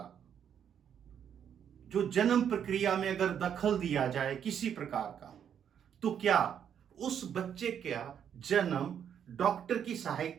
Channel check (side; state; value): left; quieter; 8.6 dB